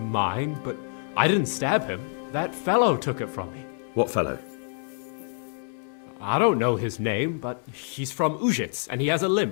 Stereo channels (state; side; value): silent; right; 60 dB below the other